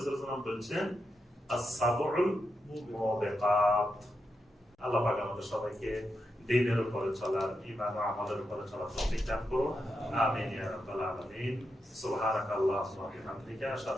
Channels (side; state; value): both; normal; correlation 0.86